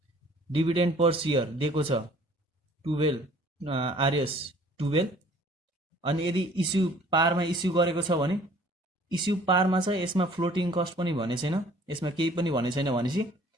Dividend per share दिएको छ 12 आरएस 12। अनि यदि इस्यु पारमा इस्यु गरेको छ भने इस्यु पारमा छ, यसमा फ्लोटिङ कस्ट पनि भने छैन, यसमा केही पनि भने छैन भनेपछि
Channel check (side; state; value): both; normal; correlation 0.54